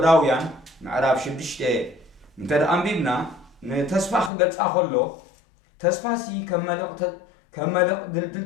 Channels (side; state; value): right; drops out; at 4.3 s